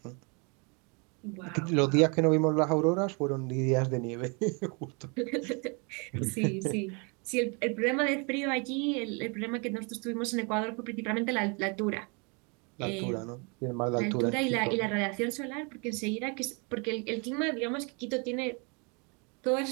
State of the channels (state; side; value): quieter; left; 33.0 dB